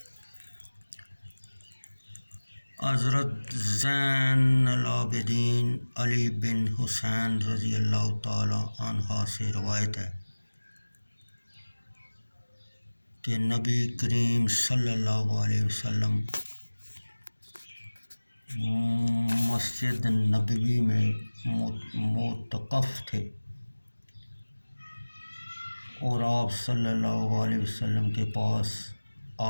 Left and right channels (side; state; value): both; inverted; correlation -1.00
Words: حضرت زین العابدین علی بن حسین رضی اللہ تعالی عنہ سے روایت ہے کہ نبی کریم صلی اللہ علیہ وسلم مسجد نبوی میں معتکف تھے اور آپ صلی اللہ علیہ وسلم کے پاس